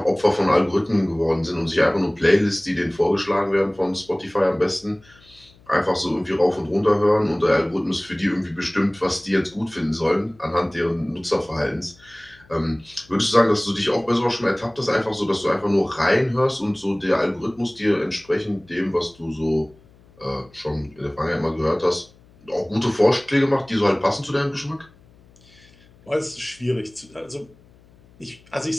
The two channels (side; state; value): left; noise; hum, 28 dB below the sound